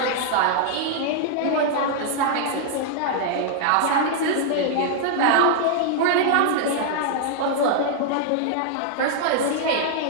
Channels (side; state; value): both; different; correlation -0.01